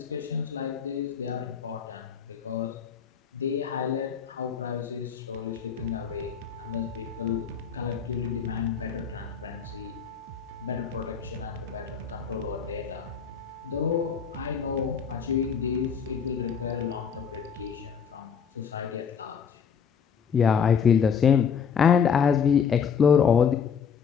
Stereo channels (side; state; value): right; quieter; 6.9 dB